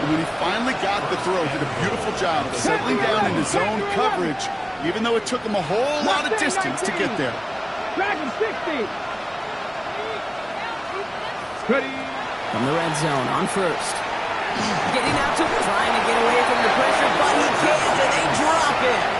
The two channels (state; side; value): identical; both; correlation 1.00